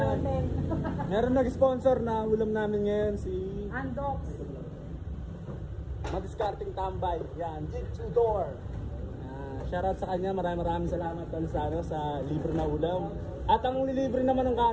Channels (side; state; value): both; identical; correlation 1.00